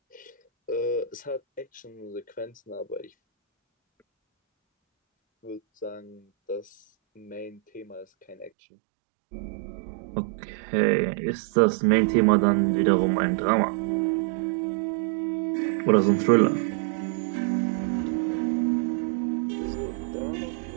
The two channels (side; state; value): left; drops out; at 8.5 s